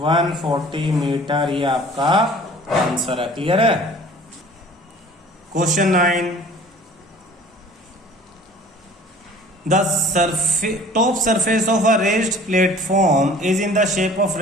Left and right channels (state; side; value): normal; both; correlation 0.48